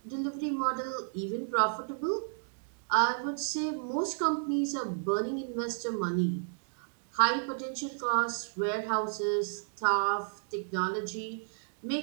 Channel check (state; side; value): silent; left; digital silence